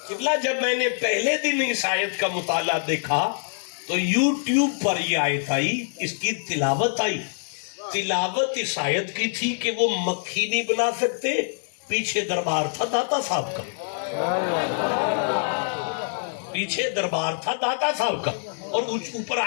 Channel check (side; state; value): right; silent; digital silence